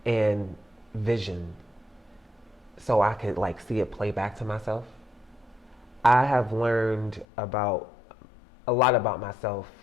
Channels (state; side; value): drops out; right; at 7.2 s